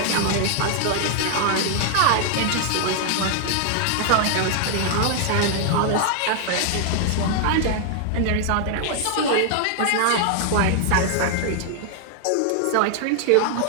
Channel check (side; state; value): both; different; correlation 0.00